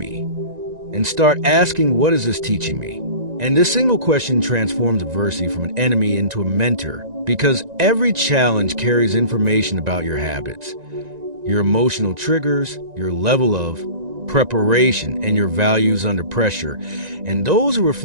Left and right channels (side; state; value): left; late; 1.9 ms